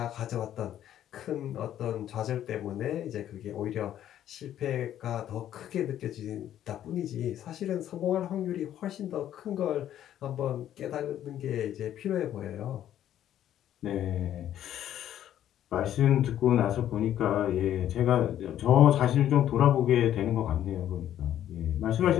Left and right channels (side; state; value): right; quieter; 11.3 dB